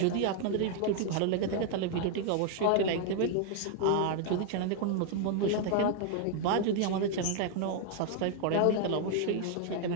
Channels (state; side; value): different; both; correlation 0.00